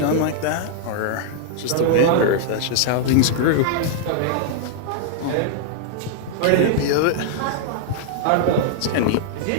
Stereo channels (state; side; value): different; both; correlation -0.01